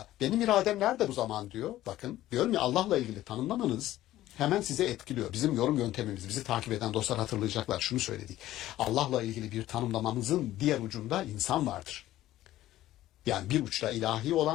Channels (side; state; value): right; quieter; 14.6 dB